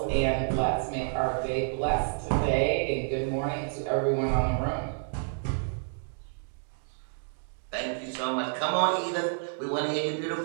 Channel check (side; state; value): left; silent; digital silence